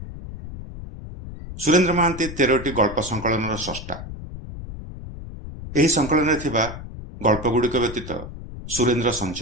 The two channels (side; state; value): left; noise; rumble, 11 dB below the sound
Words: सुरेंद्र महांती 13टी गल्प संकलन स्रष्टा। यही संकलन थिबा गल्पगुड़िक व्यतीत सुरेंद्र